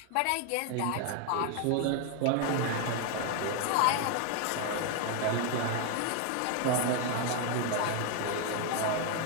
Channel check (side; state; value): both; different; correlation 0.00